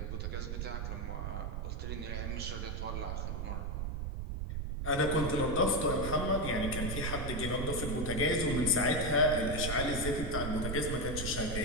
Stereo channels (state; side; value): noise; right; rumble, 3 dB below the sound